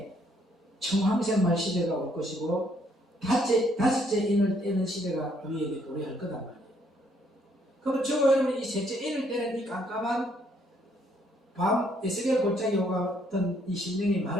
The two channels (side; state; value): both; normal; correlation 0.69